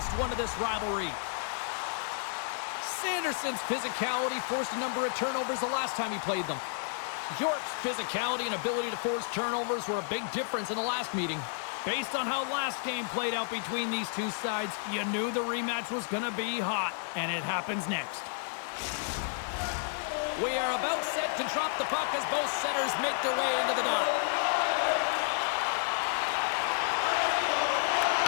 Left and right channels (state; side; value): silent; right; digital silence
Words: one of this rivalry. Sanderson's physicality forced a number of turnovers the last time he played them. York's physicality and ability to force turnovers were a big difference in the last meeting. Based on how last game played out between these two sides, you knew the rematch was going to be hot, and it happens next. We are about set to drop the puck as both centers make their way into the dot.